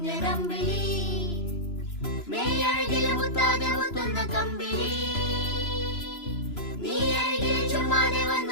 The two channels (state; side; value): late; right; 3.0 ms